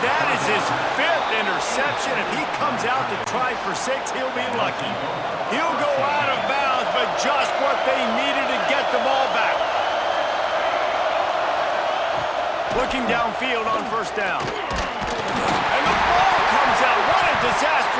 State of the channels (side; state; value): both; identical; correlation 1.00